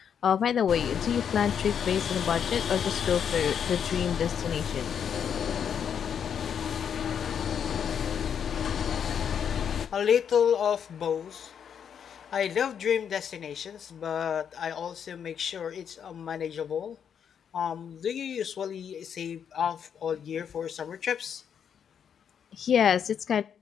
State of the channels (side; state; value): right; quieter; 7.9 dB